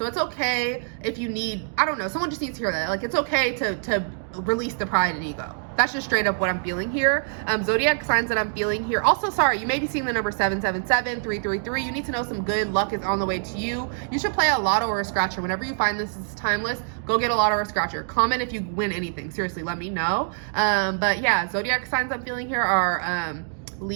it's okay if you need, I don't know, someone just needs to hear that. Like it's okay to release the pride and ego. That's just straight up what I'm feeling here. Zodiac signs that I'm feeling here. Also, sorry, you may be seeing the number 777, 333. You need to know some good luck is on the way to you. You should play a lotto or a scratcher. Whenever you find this is timeless, go get a lotto or a scratcher. Comment if you win anything. Seriously, let me know. But yeah, zodiac signs I'm feeling here are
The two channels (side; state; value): left; silent; digital silence